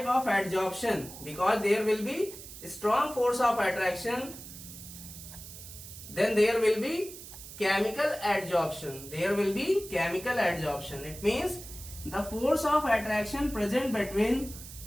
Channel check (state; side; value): noise; right; hiss, 14 dB below the sound